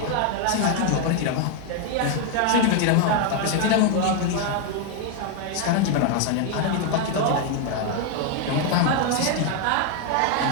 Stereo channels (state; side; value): different; both; correlation 0.01